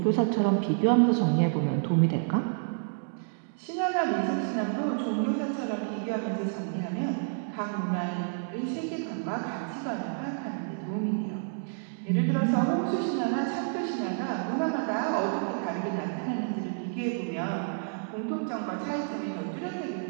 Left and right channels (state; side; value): silent; left; digital silence